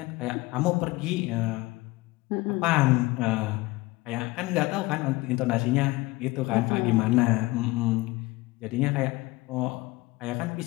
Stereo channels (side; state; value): right; quieter; 21.3 dB